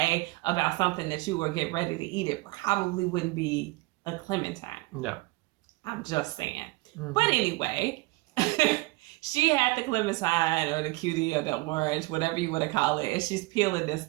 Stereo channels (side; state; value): left; quieter; 22.8 dB